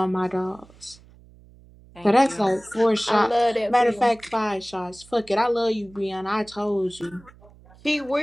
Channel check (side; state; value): right; noise; hum, 25 dB below the sound